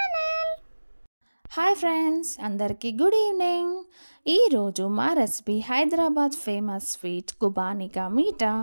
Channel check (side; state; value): both; inverted; correlation -1.00